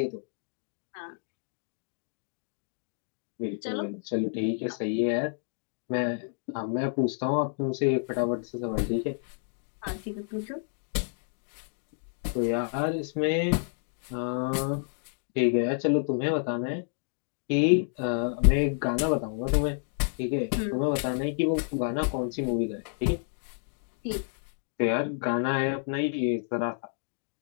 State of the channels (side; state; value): right; silent; digital silence